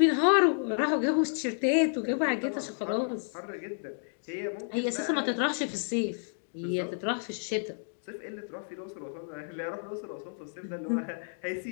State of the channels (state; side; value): silent; right; digital silence